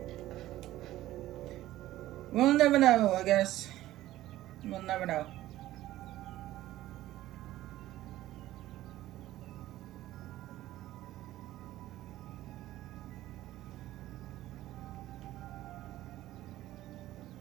We'll never know, I guess. We'll never know.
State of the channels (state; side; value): quieter; left; 15.1 dB